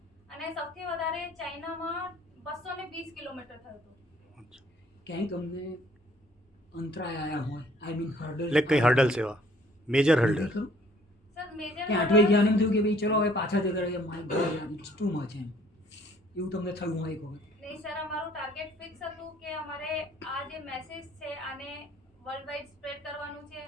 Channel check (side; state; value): both; normal; correlation 0.59